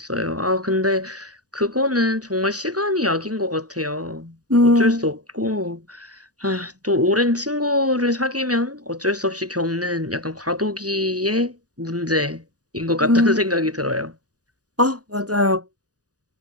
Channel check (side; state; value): left; late; 0.68 ms